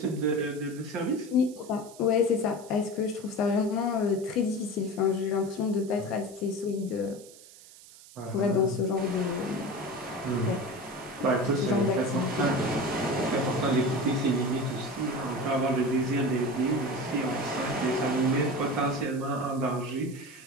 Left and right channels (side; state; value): right; noise; hiss, 21 dB below the sound